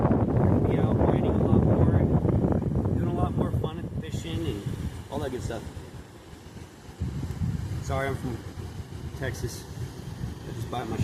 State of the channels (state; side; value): identical; both; correlation 1.00